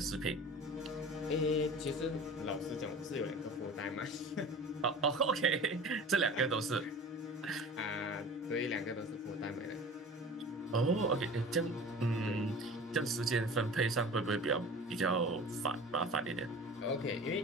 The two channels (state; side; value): normal; both; correlation 0.39